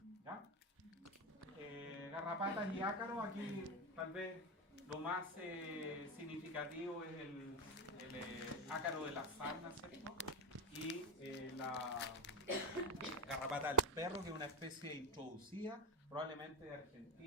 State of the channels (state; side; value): normal; both; correlation 0.12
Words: ¿ya? Garrapatas y ácaros, aquí tal vez lo más significativo es el ácaro de la sarna, ¿cierto? Y la garrapata del perro, que es una especie introducida, probablemente de